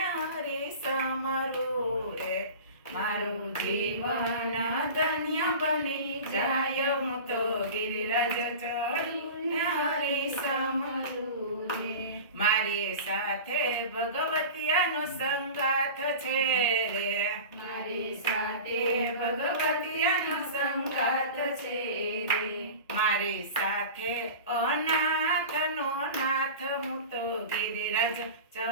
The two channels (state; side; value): inverted; both; correlation -0.34